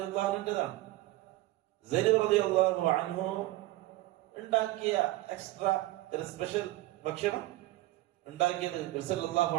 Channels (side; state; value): left; quieter; 17.4 dB